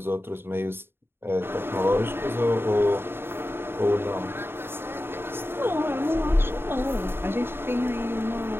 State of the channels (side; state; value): left; late; 0.11 ms